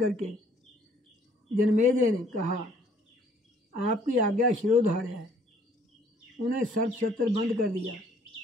जनमेजय ने कहा, आपकी आज्ञा शिरोधार्य है। उन्हें सर्प सत्र बंद कर दिया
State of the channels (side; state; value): both; normal; correlation 0.61